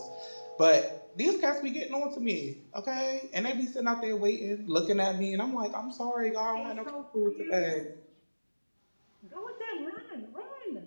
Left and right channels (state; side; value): inverted; both; correlation -1.00